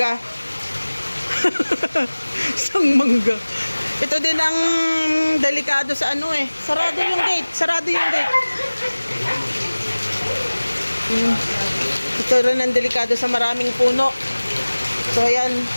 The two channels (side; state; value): both; inverted; correlation -1.00